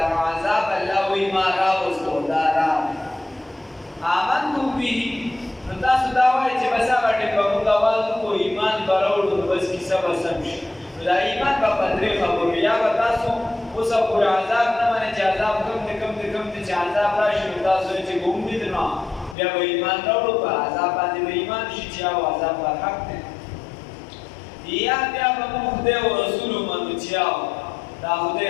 عذاب الله وایي ما راوستو دا راغی آمنتم به نو تاسو دا وایئ چې بس هغه ټکه موږ اول کو ایمان به راوړو نو بس کیسه به سم شي. نو دا ایمان به په درې خبرو یا به تاسو اوسه پورې عذاب نه منئ چې عذاب کم دی چې عذاب راشي نو تاسو وایئ چې ګوم دي نو بیا به ایمان راوړو په عذاب باندې به ایمان شي چې هغه عذاب به حق دی یا بیا به موږ خدای او رسول ومنو چې دا خدای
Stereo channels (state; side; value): drops out; right; at 19.4 s